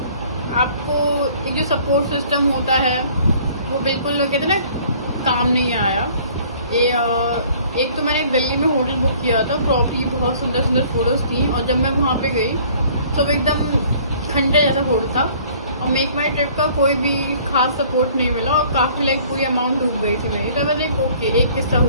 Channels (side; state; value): both; inverted; correlation -0.54